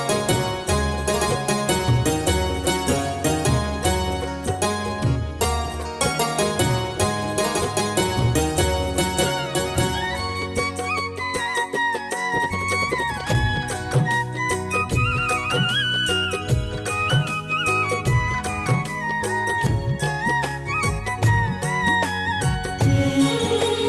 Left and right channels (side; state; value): both; identical; correlation 1.00